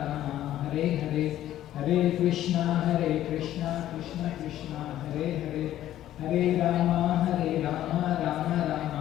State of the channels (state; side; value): quieter; right; 12.8 dB